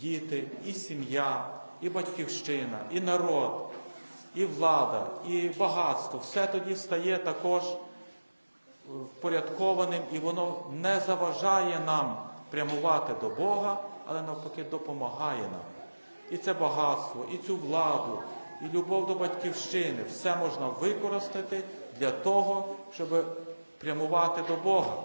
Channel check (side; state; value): both; inverted; correlation -1.00